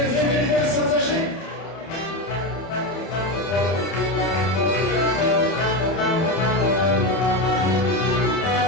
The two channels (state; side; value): late; right; 30 ms